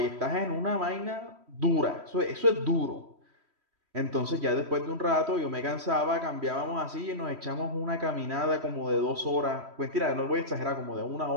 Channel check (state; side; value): late; left; 3.1 ms